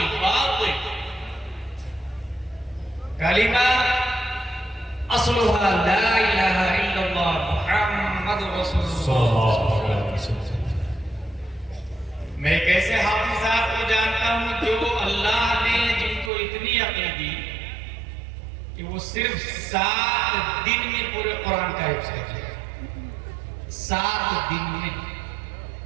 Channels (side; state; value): left; drops out; at 16.3 s